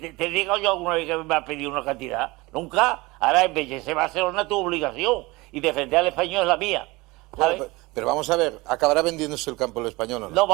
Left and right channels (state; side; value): quieter; left; 22.5 dB